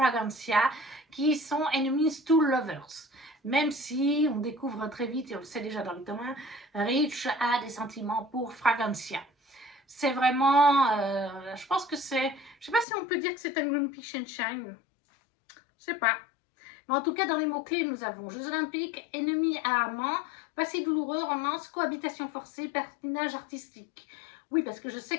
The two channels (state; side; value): drops out; right; at 12.9 s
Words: qui sont enemies to lovers. Même si on découvre très vite, et on le sait déjà dans le tome 1, Rich a des sentiments pour Fragancia. C'est vraiment, je pense que c'est, je sais pas si on peut dire que c'est un Grumpy Sunshine, je sais pas. Mais en tout cas, dans les mots-clés, nous avons Jeux Olympiques, ennemis à amants, passé douloureux, romance, cohabitation forcée, patinage artistique. Oui, parce que je sais